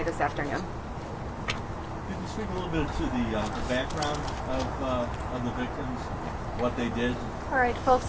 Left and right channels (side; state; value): both; identical; correlation 1.00